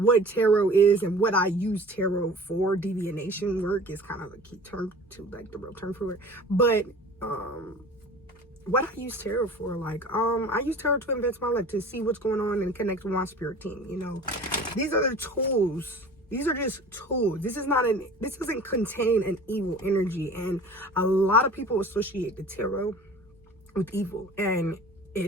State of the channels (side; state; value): both; normal; correlation 0.42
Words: tarot is and what I use tarot for. Divination work is kind of a key term to, like, the real term for it. But what I use tarot for, like, I use tarot to advance my life, to see what's going on and connect with my spirit team. You know, these are the tools. These are just tools. This doesn't contain an evil energy, and a lot of people associate the tarot with evil, and